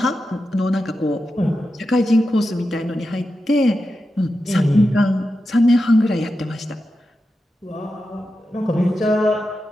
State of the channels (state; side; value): normal; both; correlation 0.90